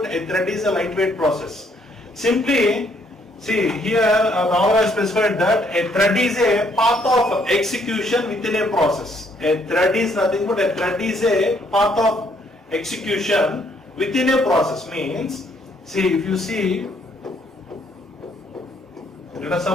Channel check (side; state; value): both; normal; correlation 0.68